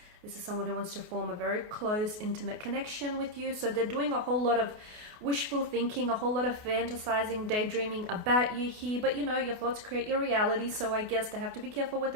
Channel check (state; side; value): late; left; 28 ms